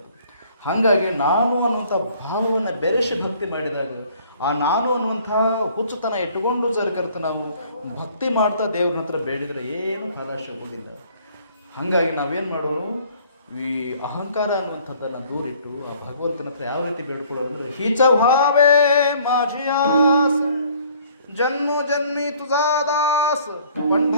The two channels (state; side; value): inverted; both; correlation -0.57